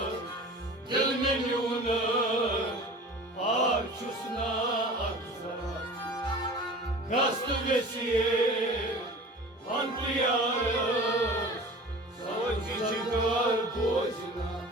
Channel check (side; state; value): both; normal; correlation 0.40